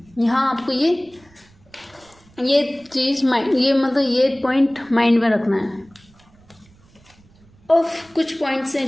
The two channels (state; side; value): noise; right; rumble, 29 dB below the sound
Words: यहाँ आपको ये चीज़ माइंड, ये मतलब ये पॉइंट माइंड में रखना है. और कुछ पॉइंट्स हैं